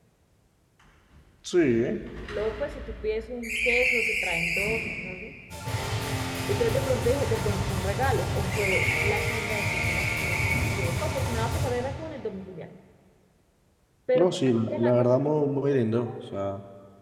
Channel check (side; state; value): both; identical; correlation 1.00